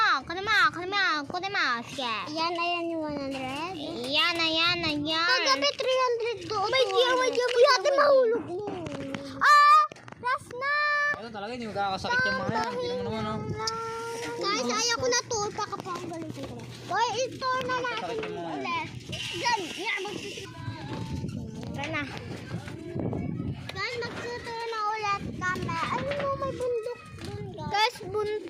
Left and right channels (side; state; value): both; identical; correlation 1.00